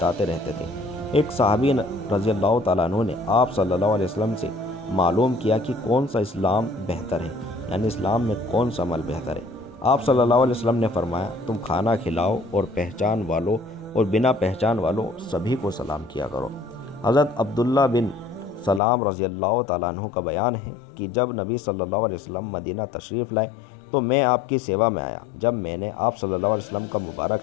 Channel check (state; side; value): drops out; right; at 18.8 s